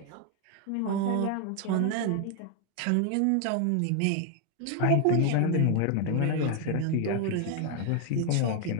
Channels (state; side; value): different; both; correlation 0.01